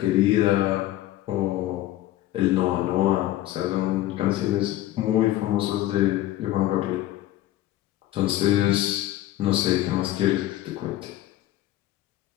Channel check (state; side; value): quieter; right; 14.7 dB